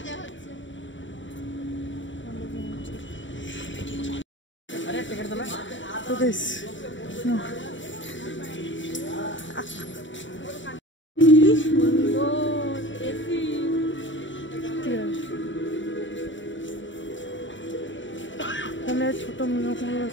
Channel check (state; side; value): late; right; 0.55 ms